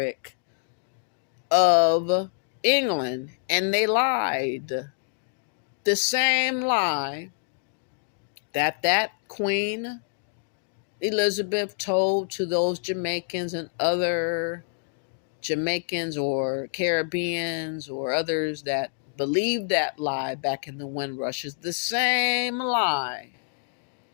of England. And they lied. The same lie that Queen Elizabeth told to those Jamaicans and other Jamaicans or Caribbeans or others that believed that lie back in the Windrush is the same lie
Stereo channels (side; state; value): right; silent; digital silence